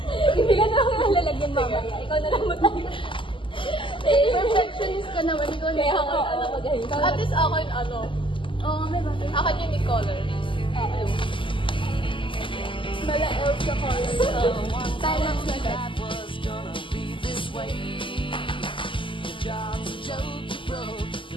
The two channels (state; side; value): late; right; 0.25 ms